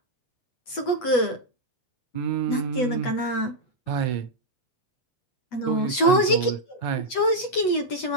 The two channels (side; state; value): right; late; 8.1 ms